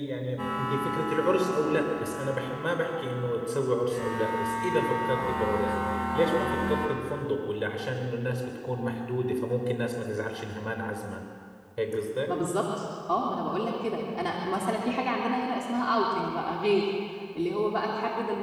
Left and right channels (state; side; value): identical; both; correlation 1.00